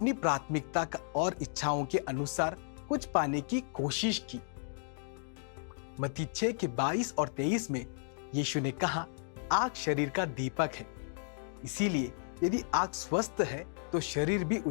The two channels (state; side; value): silent; right; digital silence